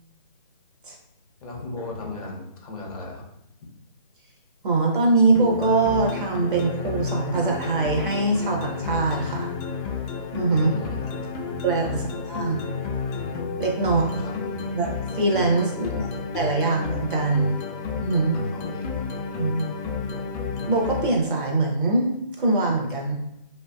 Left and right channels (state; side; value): inverted; both; correlation -0.53